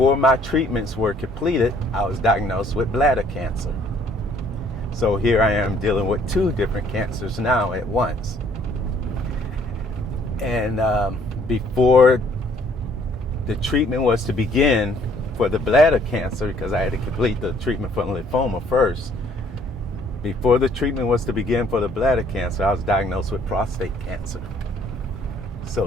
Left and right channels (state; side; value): normal; both; correlation 0.61